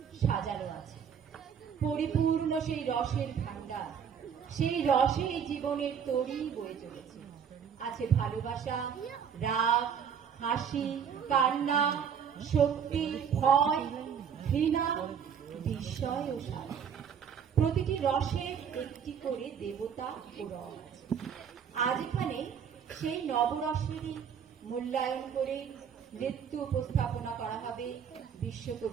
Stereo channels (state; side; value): quieter; left; 7.6 dB